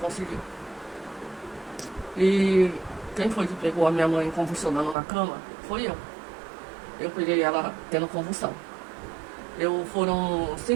E quem foi que pegou a minha mãe convulsionando na cama? Foi eu. Eu peguei ela tendo convulsão. Foram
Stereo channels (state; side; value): drops out; left; at 5.0 s